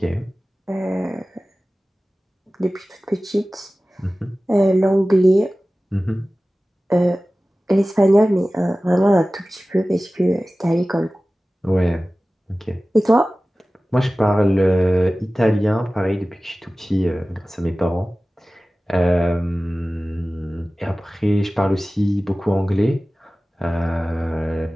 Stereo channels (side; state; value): both; normal; correlation 0.97